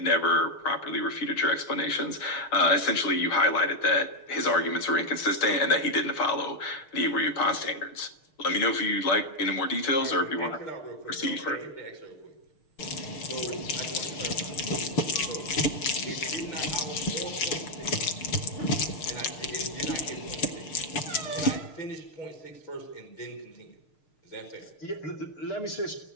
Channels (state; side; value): late; right; 6.5 ms